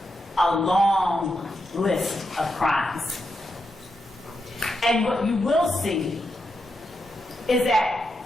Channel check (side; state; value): both; normal; correlation 0.85